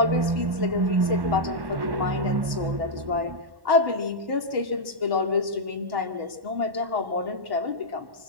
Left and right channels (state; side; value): late; left; 1.1 ms